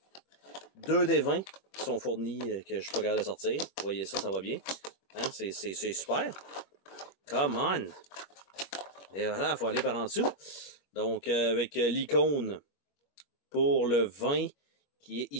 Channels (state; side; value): late; right; 25 ms